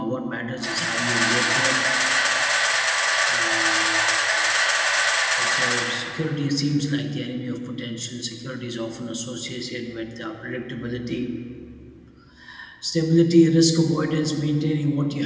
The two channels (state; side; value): identical; both; correlation 1.00